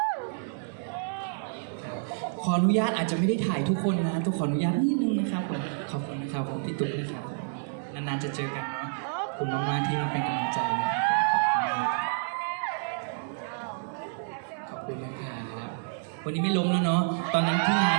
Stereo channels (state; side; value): silent; left; digital silence